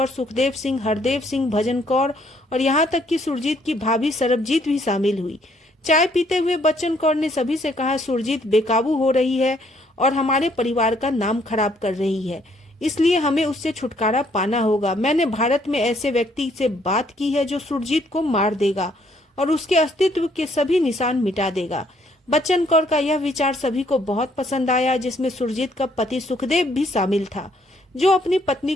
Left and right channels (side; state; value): both; normal; correlation 0.67